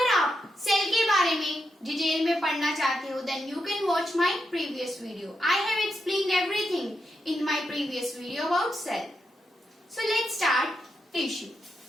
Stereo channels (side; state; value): both; normal; correlation 0.84